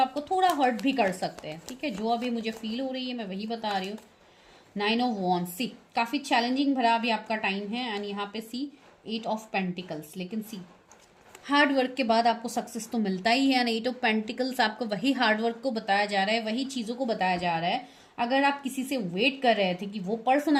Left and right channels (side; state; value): both; identical; correlation 1.00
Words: थोड़ा हर्ट भी कर सकते हैं। ठीक है, जो अभी मुझे फील हो रही है मैं वही बता रही हूँ। 9 ऑफ वॉन्ड्स, सी काफी चैलेंजिंग भरा अभी आपका टाइम है, एंड यहाँ पे सी 8 ऑफ पेंटिकल्स, लेकिन सी हार्ड वर्क के बाद आपको सक्सेस तो मिलता ही है। 8 ऑफ पेंटिकल्स आपको वही हार्ड वर्क को बताया जा रहा है, वही चीज़ों को बताया जा रहा है। अगर आप किसी से वेट कर रहे थे कि वो पर्सन